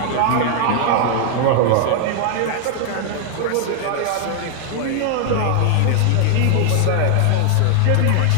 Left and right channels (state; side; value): different; both; correlation 0.00